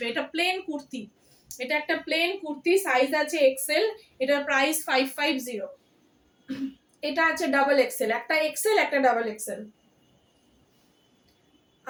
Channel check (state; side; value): identical; both; correlation 1.00